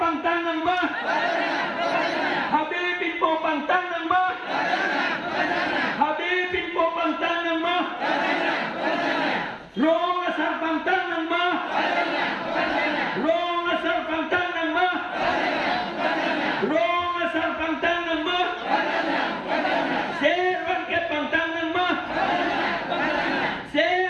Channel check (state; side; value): identical; both; correlation 1.00